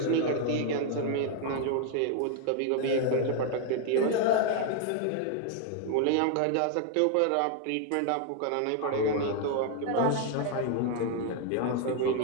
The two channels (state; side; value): different; both; correlation 0.00